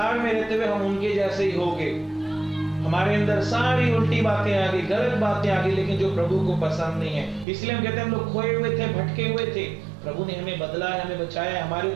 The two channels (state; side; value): drops out; left; at 7.5 s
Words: में रहते हुए हम उनके जैसे ही होंगे। हमारे अंदर सारी उल्टी बातें आ गई, गलत बातें आ गई, लेकिन जो प्रभु को पसंद नहीं है। इसलिए हम कहते हैं हम लोग खोए हुए थे, भटके हुए थे, प्रभु ने हमें बदला है, हमें बचाया, हमारे